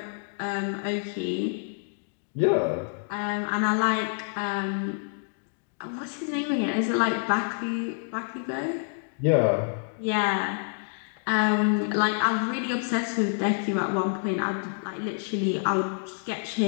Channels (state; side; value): silent; right; digital silence